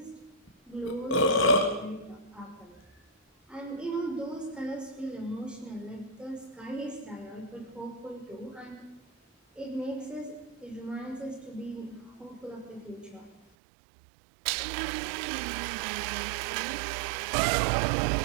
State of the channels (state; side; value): drops out; left; at 13.4 s